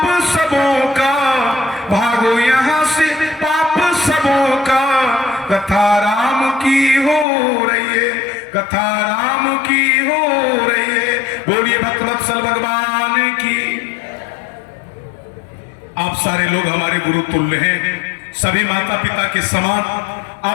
सबों का, भागो यहाँ से पाप सबों का। कथा राम की हो रही है, कथा राम की हो रही है। बोलिए भक्तवत्सल भगवान की। आप सारे लोग हमारे गुरु तुल्य हैं, सभी माता पिता के समान।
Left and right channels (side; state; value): right; drops out; at 7.2 s